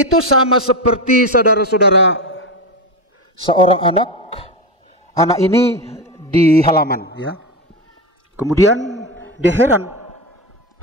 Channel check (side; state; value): both; normal; correlation 0.17